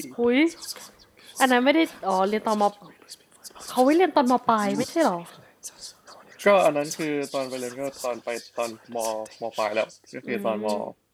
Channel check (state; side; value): identical; both; correlation 1.00